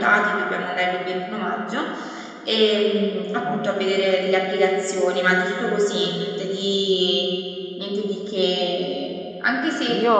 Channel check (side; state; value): both; identical; correlation 1.00